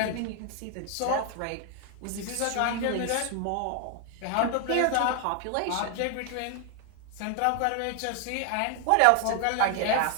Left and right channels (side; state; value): both; different; correlation 0.00